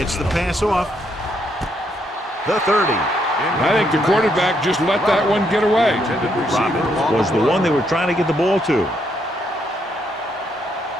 the pass off. The 30. I think the quarterback just let that one get away. Robbins was the one they were trying to get the ball to.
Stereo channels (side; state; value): both; normal; correlation 0.75